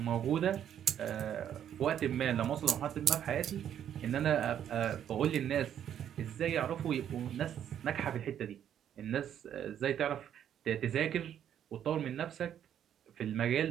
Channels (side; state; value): left; quieter; 9.8 dB